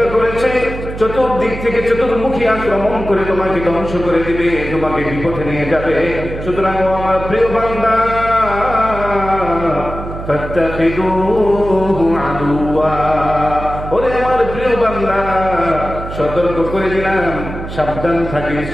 করেছে চতুর্দিক থেকে চতুর্মুখী আক্রমণ করে তোমাকে ধ্বংস করে দিবে, তোমাকে বিপথে নিয়ে যাবে। সুতরাং ও আমার প্রিয় বান্দা, ফাত্তাখিযুহু আদুওয়া, ওরে আমার প্রিয় বান্দা, সতর্ক করে দিলাম, সাবধান থাকিস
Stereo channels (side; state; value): right; noise; hum, 9 dB below the sound